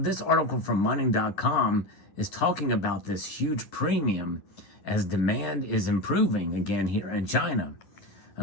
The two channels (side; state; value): right; late; 10 ms